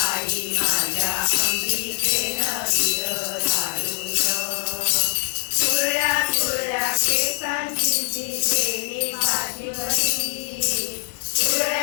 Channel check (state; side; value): silent; right; 64 dB below the other